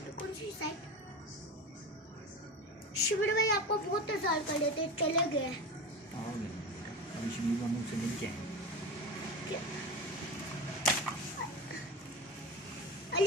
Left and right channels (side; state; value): both; normal; correlation 0.25